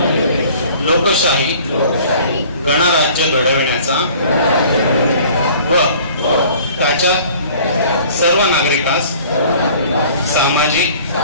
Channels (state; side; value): inverted; both; correlation -0.50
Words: लोकशाही गणराज्य घडविण्याचा व त्याच्या सर्व नागरिकास सामाजिक